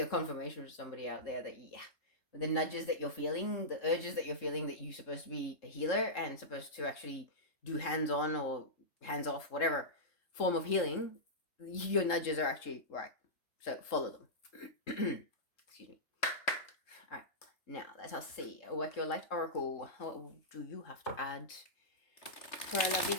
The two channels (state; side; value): late; right; 3.7 ms